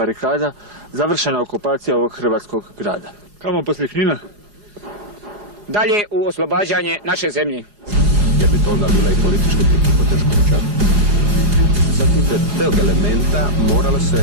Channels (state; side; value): late; left; 4.8 ms